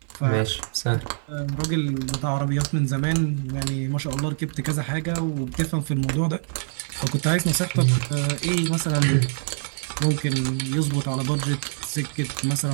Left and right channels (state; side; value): silent; left; digital silence